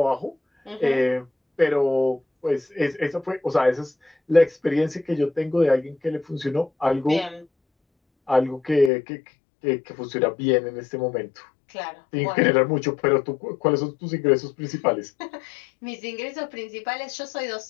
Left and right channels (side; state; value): right; drops out; at 8.9 s